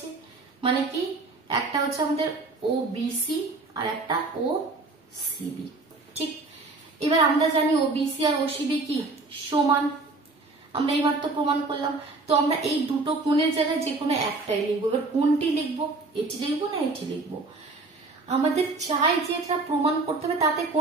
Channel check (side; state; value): left; quieter; 3.5 dB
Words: মানে কি একটা হচ্ছে আমাদের ও বিসি আর একটা ও সিবি। ঠিক, এবার আমরা জানি ও বিসি আর ও সিবি কি সমান, আমরা এইবার তো প্রমাণ করলাম। তো আমরা এই দুটো কোণের জায়গায় যে কোনো একটাই লিখবো। এবার কোনটি লিখবো? এটি লিখবো না এটি লিখবো? আমাদের চাই যে এটা প্রমাণ করতে হবে তাতে